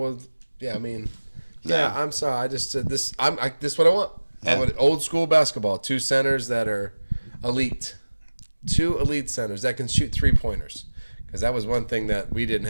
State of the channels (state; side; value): inverted; both; correlation -1.00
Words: I'm sorry. I just said this. This is what I want. Yeah. I would old school basketball. 2 centers that are elite. 2 elite centers that can shoot 3-pointers. Because that was one thing that we didn't